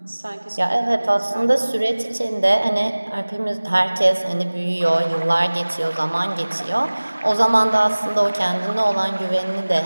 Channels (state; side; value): inverted; both; correlation -1.00